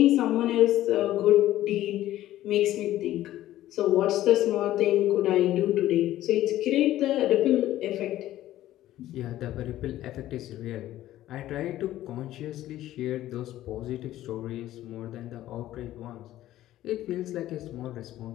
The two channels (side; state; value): right; quieter; 14.1 dB